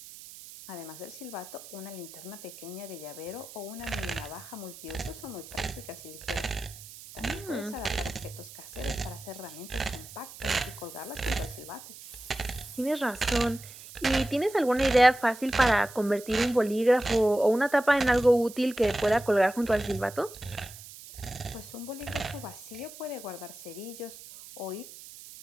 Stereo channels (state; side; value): noise; right; hiss, 16 dB below the sound